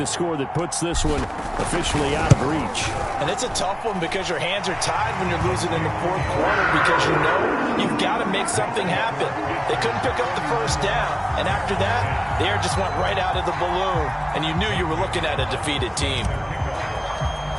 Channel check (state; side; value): identical; both; correlation 1.00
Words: score that puts this one officially out of reach. And it's a tough one because your hands are tied when you're losing in the 4th quarter because you know you've got to make something happen. They couldn't pick up the 1st down, and after that, the air just went right out of the balloon, and you knew you were looking at a defeated team.